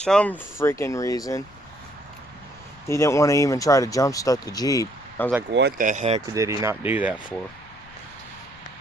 freaking reason, he didn't want to even try to jump start the Jeep. I was like, what the heck did he not do that for?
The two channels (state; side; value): noise; left; rumble, 25 dB below the sound